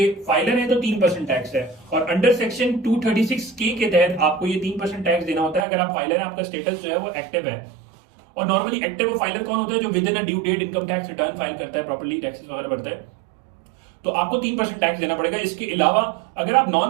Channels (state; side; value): drops out; left; at 5.7 s